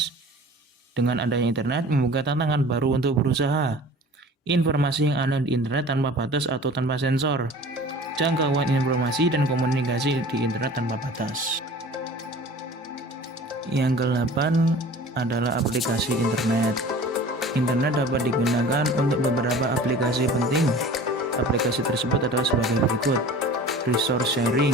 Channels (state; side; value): normal; both; correlation 0.43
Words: Dengan adanya internet membuka tantangan baru untuk berusaha. Informasi yang ada di internet tanpa batas atau tanpa sensor. Jangkauan informasi dan komunikasi di internet tanpa batas. Yang ke-8 adalah aplikasi internet. Internet dapat digunakan untuk beberapa aplikasi penting. Aplikasi tersebut adalah sebagai berikut: resource